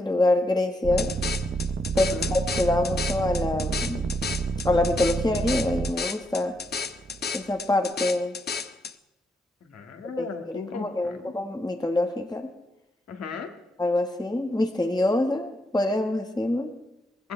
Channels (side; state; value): both; normal; correlation 0.79